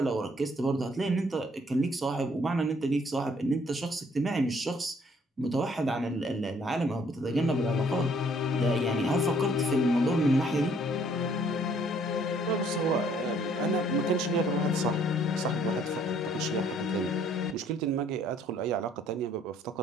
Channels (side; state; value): both; normal; correlation 0.62